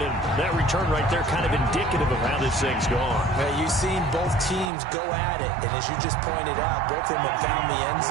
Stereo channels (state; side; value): drops out; left; at 4.7 s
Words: and that return right there kind of indicative of how this thing's gone. Well, you've seen both teams go at it, and as you just pointed out, both of them have found the end